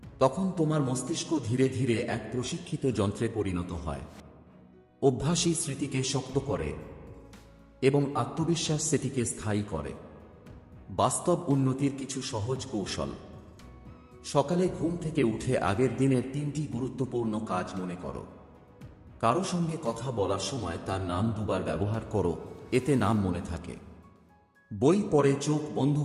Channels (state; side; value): identical; both; correlation 1.00